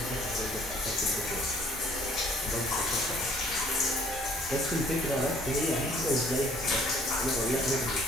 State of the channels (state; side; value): normal; both; correlation 0.58